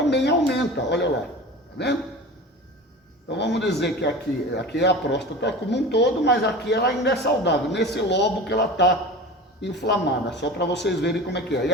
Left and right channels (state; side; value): normal; both; correlation 0.34